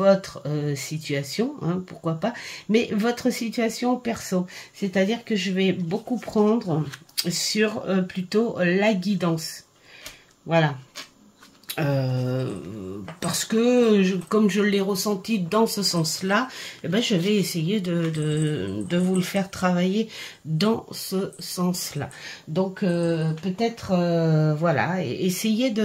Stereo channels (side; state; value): both; identical; correlation 1.00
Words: situation, hein, pourquoi pas, mais votre situation perso, c'est-à-dire que je vais beaucoup prendre sur plutôt la guidance, voilà. Parce que comme je l'ai ressenti dans ce sens-là, eh ben, je vais essayer de vous le faire travailler dans ce sens-là. Donc peut-être voilà, essayez